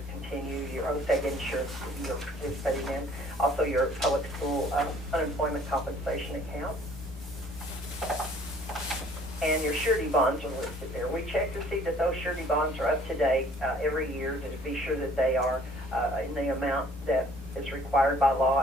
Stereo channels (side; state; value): both; normal; correlation 0.56